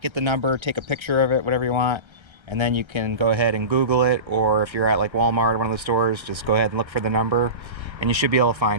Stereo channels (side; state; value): left; late; 1.3 ms